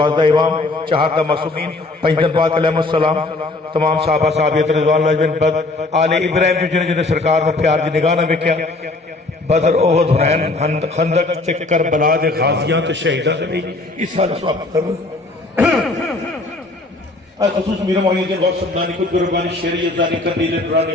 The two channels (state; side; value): quieter; right; 3.1 dB